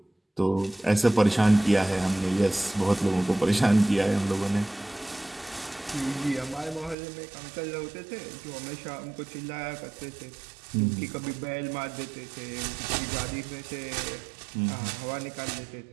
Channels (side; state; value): left; drops out; at 7.0 s